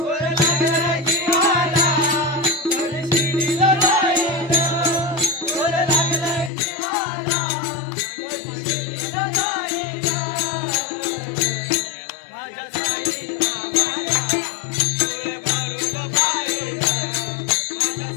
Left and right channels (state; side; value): drops out; right; at 6.5 s